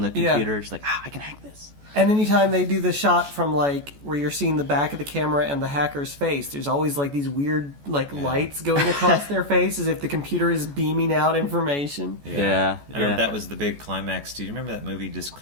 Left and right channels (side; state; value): left; late; 14 ms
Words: the computer, she's like, I can hack this. And anytime they do the shot from like where you're seeing the back of the camera and the hacker's face, there's always like these weird lights going across their face as if the computer is beaming out information. Yeah. I remember that was the big climax. Do you remember that movie